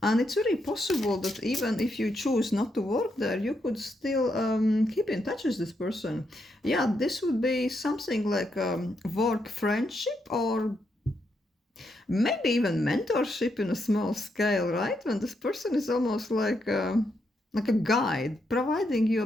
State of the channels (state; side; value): normal; both; correlation 0.80